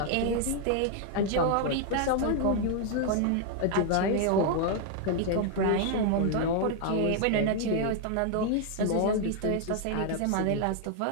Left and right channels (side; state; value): both; different; correlation 0.00